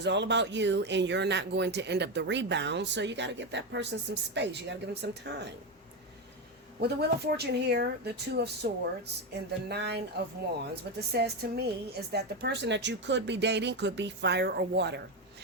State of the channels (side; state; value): both; normal; correlation 0.12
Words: all about you and you're not going to end up the rebound, so you got to give that person some space. You got to give them some time. With the Wheel of Fortune here, the Two of Swords, and the Nine of Wands, what this says to me is that the person that you could be dating could be fire or water.